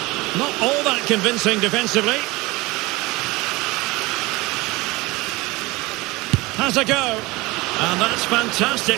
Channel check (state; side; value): quieter; left; 22.2 dB